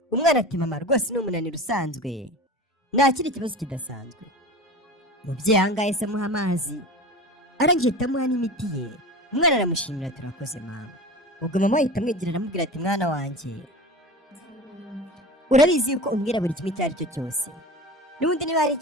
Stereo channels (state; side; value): normal; both; correlation 0.33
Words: umwana ati mama rwose ni umunaniro usanzwe nta kindi kibazo kidasanzwe. umubyeyi ahangaha yahise amuha amazi arangije ahita amuha n'imiti ye. umwana aramushimira turakoze mama. ubwo mama ahita amwegera aramubwira ati mwana wanjye urabizi yuko umbwira buri kimwe icyo ari cyo cyose, n'ubundi niba hari